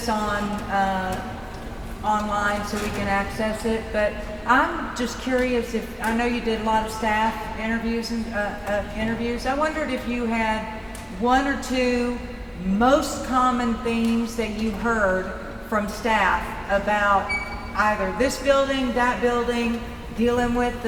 on, online so we can access it, but I'm just curious if, I know you did a lot of staff interviews and, interviews. I wondered if you had one or two most common themes that you heard from staff about either this building, that building, dealing with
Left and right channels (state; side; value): identical; both; correlation 1.00